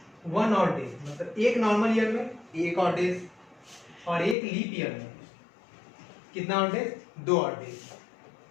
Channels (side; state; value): right; drops out; at 4.4 s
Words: 1 ऑड डेज। मतलब एक नॉर्मल ईयर में 1 ऑड डेज, और एक लीप ईयर में कितना ऑड डेज? 2 odd days.